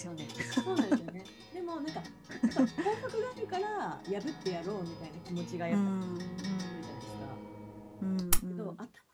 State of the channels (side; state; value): both; identical; correlation 1.00